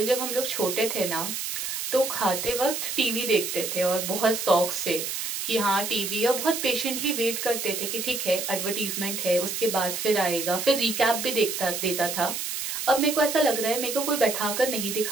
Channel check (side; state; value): right; noise; hiss, 4 dB below the sound